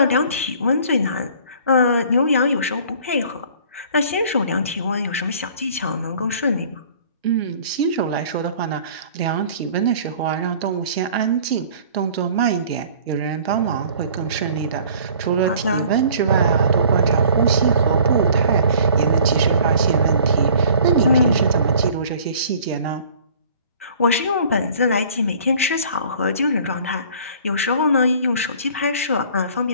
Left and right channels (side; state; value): both; inverted; correlation -0.51